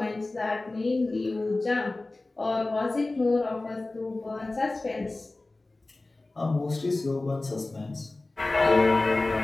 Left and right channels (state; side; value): quieter; right; 3.1 dB